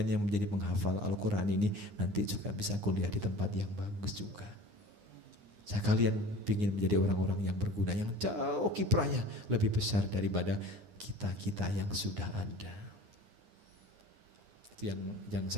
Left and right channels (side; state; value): left; late; 9.8 ms